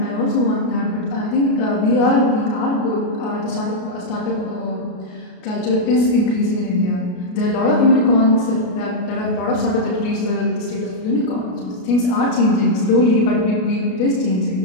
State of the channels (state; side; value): late; right; 33 ms